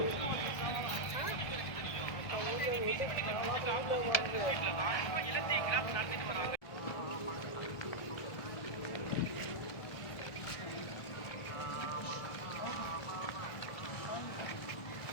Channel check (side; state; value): right; late; 1.4 ms